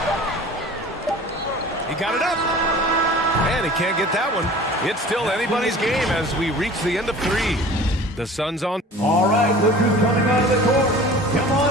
He got it up. And he can't get that one. It's still anybody's game as we reach the end of 3. The Suns on. All right, look who's coming out of the court. Come on.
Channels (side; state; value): both; normal; correlation 0.43